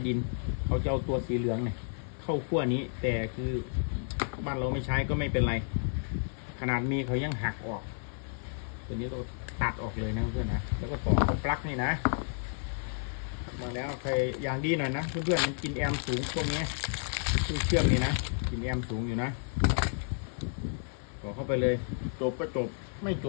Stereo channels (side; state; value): right; silent; 57 dB below the other